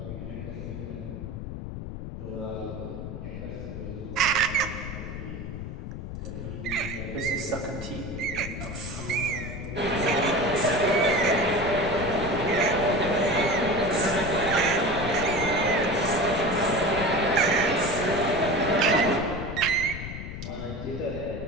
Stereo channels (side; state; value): left; noise; rumble, 8 dB below the sound